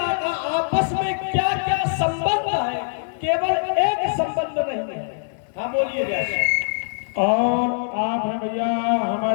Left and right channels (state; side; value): silent; right; digital silence